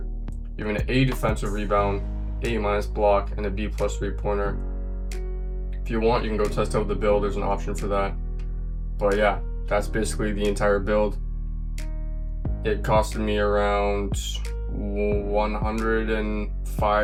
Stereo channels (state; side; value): identical; both; correlation 1.00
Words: You have an A defensive rebound, A- block, and a B+ 3-pointer. If you want, you can go test out the build. There's an option for that. But yeah, that's basically the entire build. It costed me around